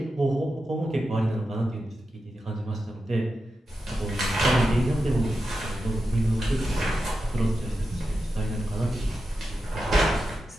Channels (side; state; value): both; normal; correlation 0.90